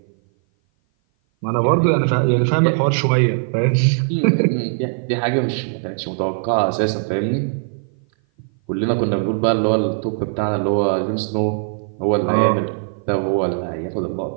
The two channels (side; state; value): left; silent; 57 dB below the other